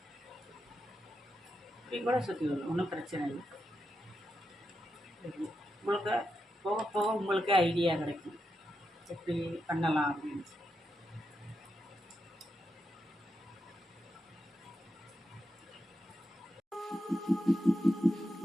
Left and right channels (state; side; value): normal; both; correlation 0.86